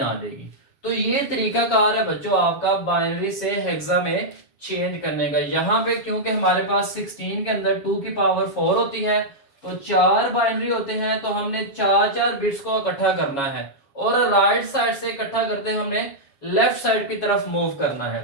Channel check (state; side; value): late; right; 7.2 ms